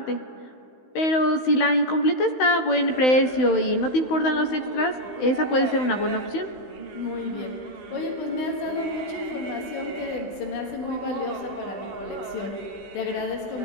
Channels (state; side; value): late; right; 16 ms